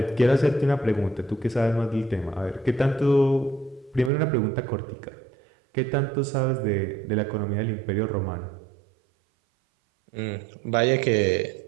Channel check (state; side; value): drops out; left; at 4.1 s